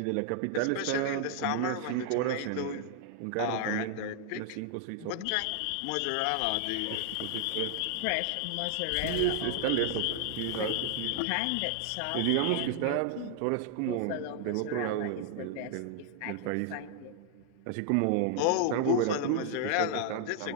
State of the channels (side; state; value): both; different; correlation 0.00